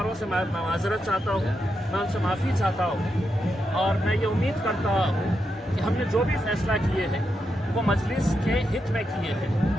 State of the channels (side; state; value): both; normal; correlation 0.85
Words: से मैं माज़रत चाहता हूँ, मैं उनसे माफ़ी चाहता हूँ और मैं ये उम्मीद करता हूँ कि हमने जो भी फैसला किए हैं वो मजलिस के हित में किए हैं,